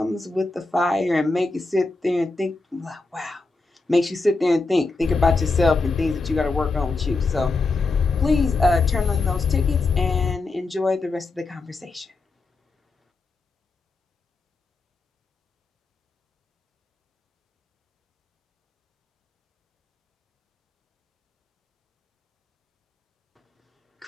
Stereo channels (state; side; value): quieter; right; 3.5 dB